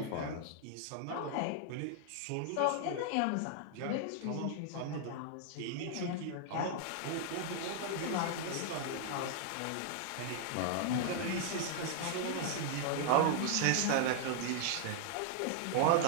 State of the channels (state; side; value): different; both; correlation 0.00